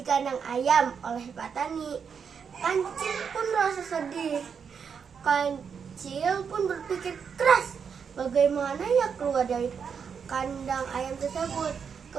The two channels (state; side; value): quieter; left; 6.6 dB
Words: kandang ayam oleh Pak Tani. Kancil pun merasa sedih. Kancil pun berpikir keras bagaimana ia keluar dari kandang ayam tersebut.